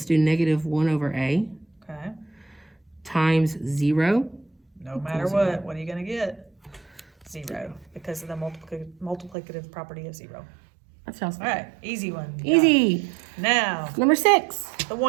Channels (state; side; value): drops out; left; at 9.3 s